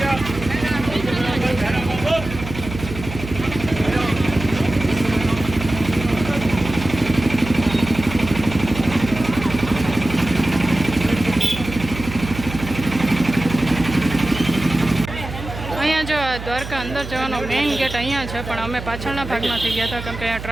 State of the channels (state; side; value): noise; right; hum, 10 dB below the sound